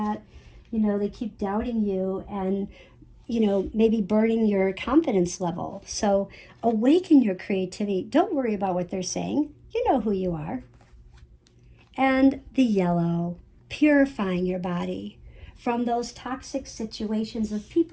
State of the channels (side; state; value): both; identical; correlation 1.00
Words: They keep doubting you and, maybe burning your confidence level. So awaken your creativity. Don't worry about what they're saying. You know who you are. And the yellow, purifying your body from those toxic situations of